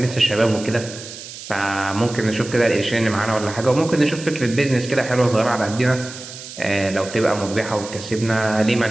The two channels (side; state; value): right; noise; hiss, 13 dB below the sound